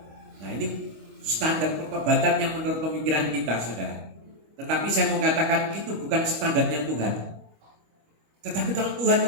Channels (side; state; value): left; late; 25 ms